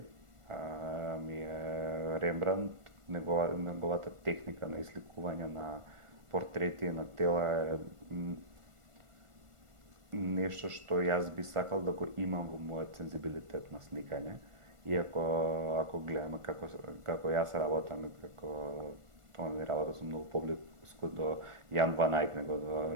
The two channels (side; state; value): left; late; 1.4 ms